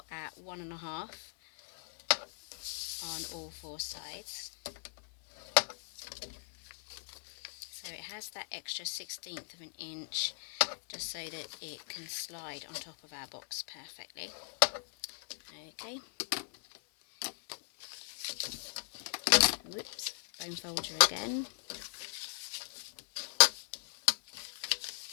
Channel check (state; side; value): silent; right; 53 dB below the other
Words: at 1.5 on all 4 sides. So it has that extra 1/16 of an inch just so that it can slide on top of our box perfectly. Okay. Whoops, bone folder again.